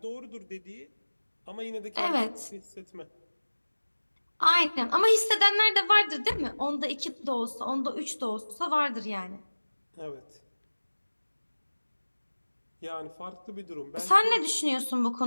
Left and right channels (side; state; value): both; inverted; correlation -1.00